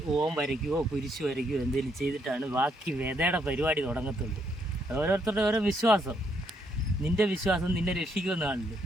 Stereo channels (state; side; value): normal; both; correlation 0.74